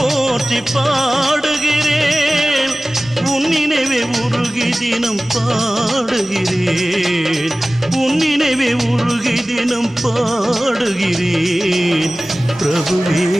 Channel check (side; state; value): both; normal; correlation 0.97